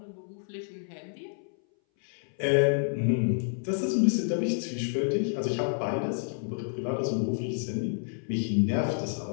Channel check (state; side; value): silent; right; 58 dB below the other